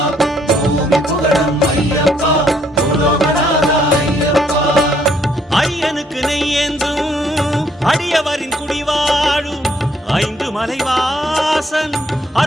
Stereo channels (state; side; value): normal; both; correlation 0.68